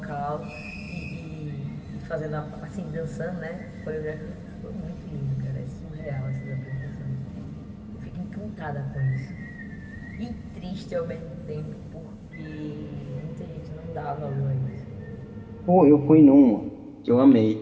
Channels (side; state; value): both; identical; correlation 1.00